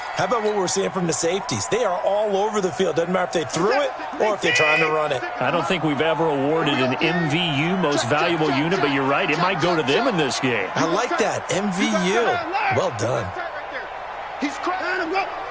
about what we're seeing from the safeties? They are all over the field. Doesn't matter if they threw it or if they're trying to run it. I don't think we've ever awarded an MVU, most valuable unit, but you're right, it might go to them in this game. I like that, MVU. Well done. He's crying.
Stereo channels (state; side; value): identical; both; correlation 1.00